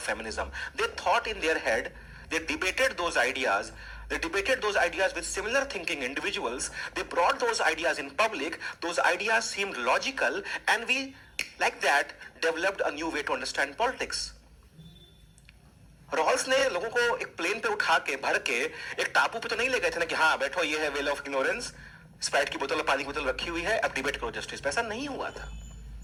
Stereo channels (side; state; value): both; identical; correlation 1.00